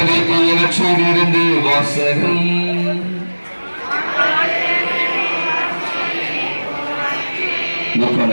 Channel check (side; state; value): both; inverted; correlation -1.00